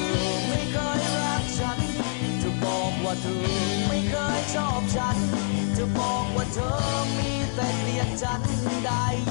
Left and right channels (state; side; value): silent; right; 61 dB below the other